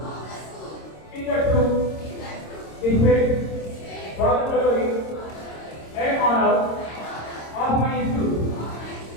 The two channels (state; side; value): late; right; 26 ms